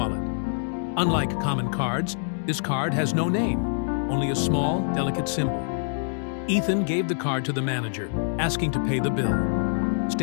Unlike common cards, this card has no name, only a small, delicate symbol. Ethan gave the card to the manager, asking to pay the bill,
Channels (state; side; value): silent; right; digital silence